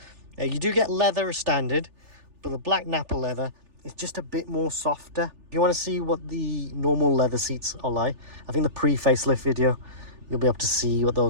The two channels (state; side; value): late; left; 3.4 ms